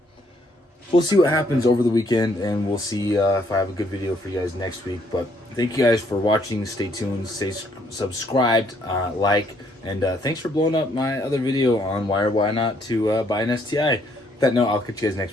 we'll see what happens over the weekend, and we'll see if I have a good video for you guys next week. But thank you guys for watching. Stay tuned, stay subscribed, like, and thanks for blowing up my other video on why or why not to buy an STI. With that note, I'll catch you guys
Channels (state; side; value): normal; both; correlation 0.69